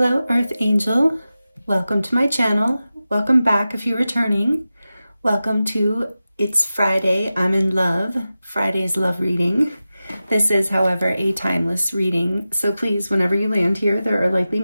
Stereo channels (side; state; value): both; inverted; correlation -0.94